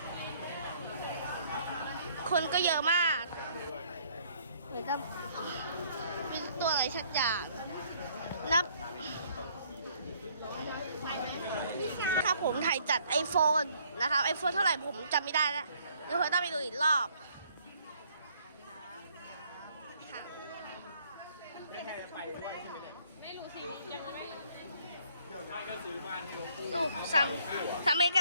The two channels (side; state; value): both; inverted; correlation -0.63